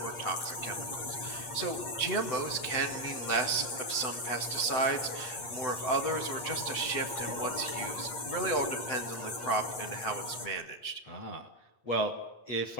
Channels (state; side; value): late; right; 8.5 ms